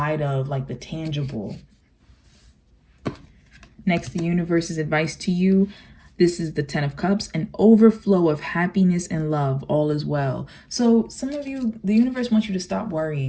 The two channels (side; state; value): both; identical; correlation 1.00